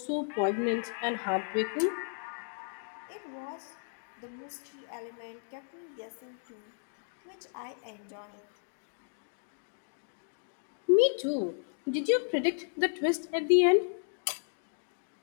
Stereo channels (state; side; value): silent; right; digital silence